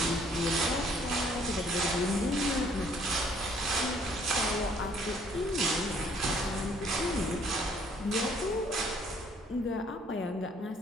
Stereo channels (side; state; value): both; normal; correlation 0.62